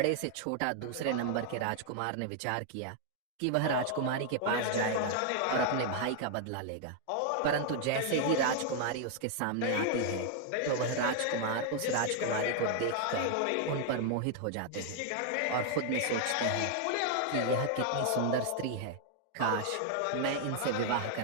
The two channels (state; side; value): different; both; correlation 0.00